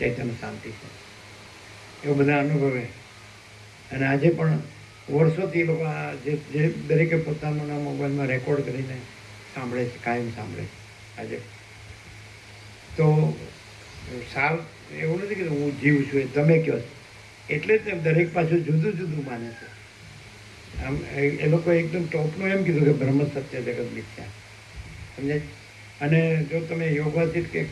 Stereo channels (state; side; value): identical; both; correlation 1.00